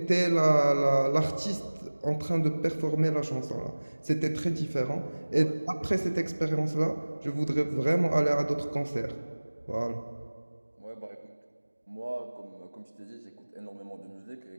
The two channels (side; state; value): both; inverted; correlation -1.00